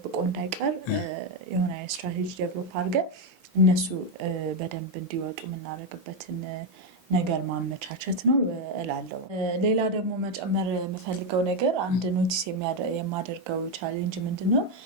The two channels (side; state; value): both; normal; correlation 0.04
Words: እንዳይቀር የሆነ ስትራቴጂ ዴቨሎፕ አድርገን እነሱ በደንብ እንዲወጡ የምናደርግበትን ነገር ማመቻቸት ነው እላለሁ። ሌላ ደግሞ መጨመር የምፈልገው ነገር አንድ ኖቲስ የማደርገው ቻሌንጅ ምንድነው